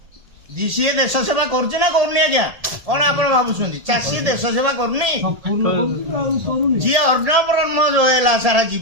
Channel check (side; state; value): left; late; 1.8 ms